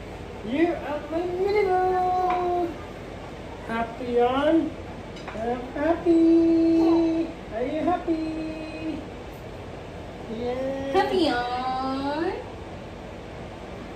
You are my mini boo! Happy on? I'm happy! Are you happy? Yeah! Happy on?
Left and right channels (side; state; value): both; identical; correlation 1.00